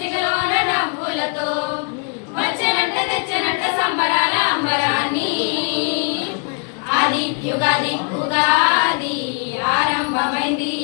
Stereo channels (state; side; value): quieter; right; 36.3 dB